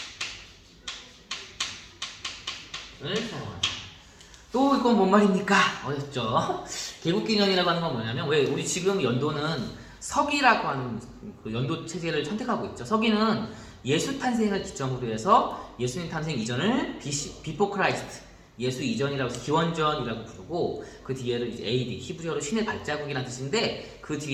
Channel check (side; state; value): both; identical; correlation 1.00